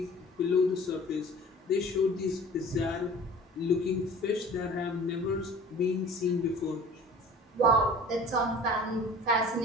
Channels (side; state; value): both; normal; correlation 0.44